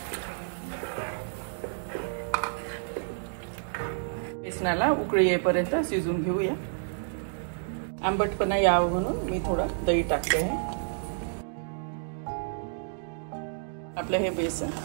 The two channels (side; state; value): left; silent; digital silence